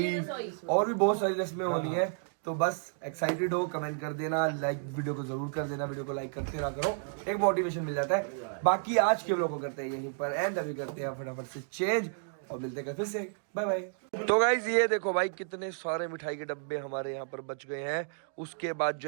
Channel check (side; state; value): left; silent; digital silence